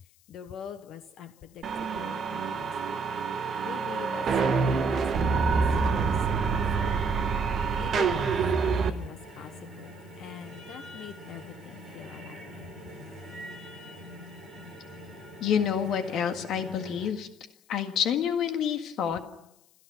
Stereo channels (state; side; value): noise; left; hiss, 30 dB below the sound